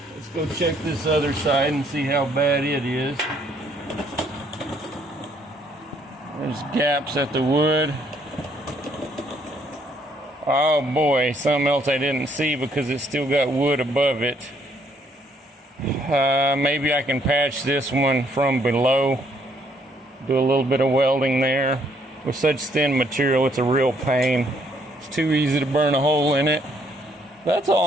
Let's go check this other side and see how bad it is. There's gaps at the wood. Oh boy, something else I didn't see because it's still got wood above it. Maybe I can patch this one from below. Do a little bit of welding there. With such thin material, it's a real pain. It's too easy to burn a hole in it. That's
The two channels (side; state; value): both; normal; correlation 0.68